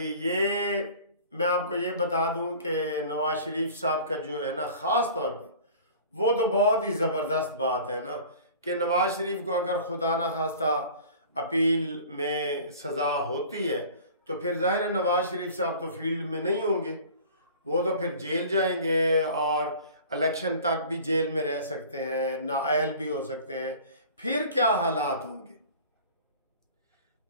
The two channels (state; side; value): inverted; both; correlation -0.44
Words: ये मैं आपको ये बता दूं कि नवाज शरीफ साहब का जो है ना, खास तौर पे वो तो बहुत ही जबरदस्त बात है ना कि नवाज शरीफ को अगर खुदा ना खास्ता अपील में सजा होती है तो फिर जाहिर है नवाज शरीफ साहब तो फील्ड में नहीं होंगे, वो तो फिर जेल जाएंगे और इलेक्शन तक भी जेल में रह सकते हैं, नाअहल भी हो सकते हैं। फिर क्या हालात होंगे?